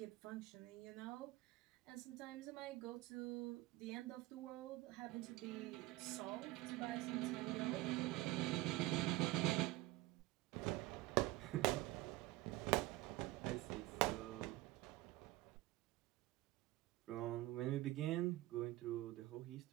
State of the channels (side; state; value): left; quieter; 18.3 dB